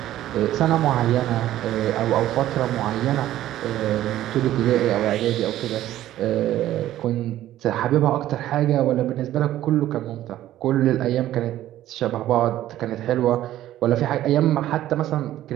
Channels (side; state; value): left; quieter; 13.5 dB